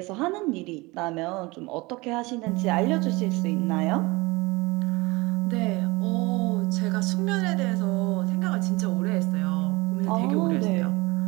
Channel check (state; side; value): quieter; left; 23.5 dB